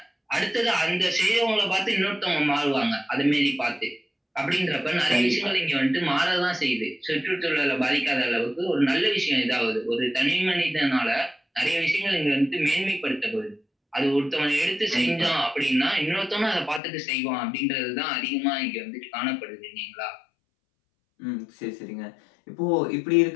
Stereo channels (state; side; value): drops out; right; at 16.8 s